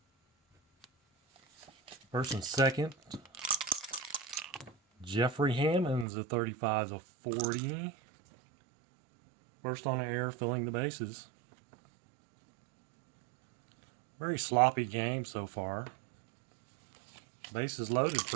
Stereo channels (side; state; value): left; drops out; at 6.1 s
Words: First and second. Jeffrey Hammond's a 35's a 40. First on the air, filling the bases. Very sloppy game so far. Bases loaded